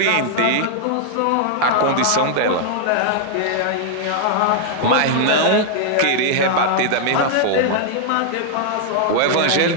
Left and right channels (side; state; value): both; different; correlation 0.00